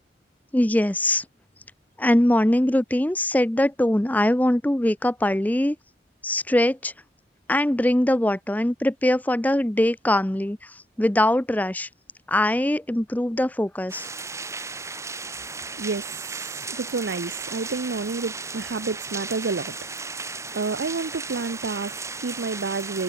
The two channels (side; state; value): both; normal; correlation 0.74